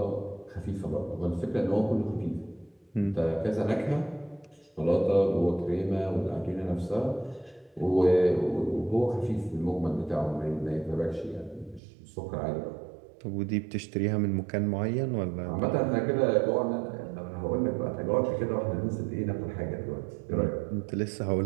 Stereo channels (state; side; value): drops out; left; at 11.8 s